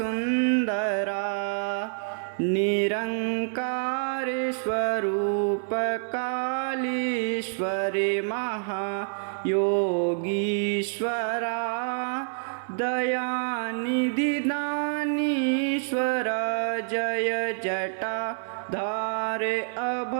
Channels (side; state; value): left; silent; 60 dB below the other